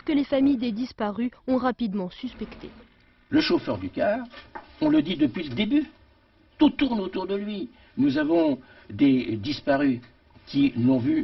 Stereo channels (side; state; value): both; identical; correlation 1.00